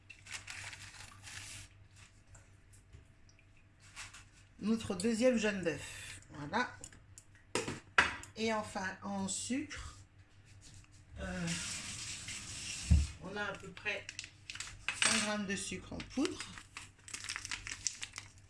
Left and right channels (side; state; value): both; identical; correlation 1.00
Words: notre deuxième jaune d'œuf. Voilà. Et enfin, en sucre, on a à peu près 100 g de sucre en poudre.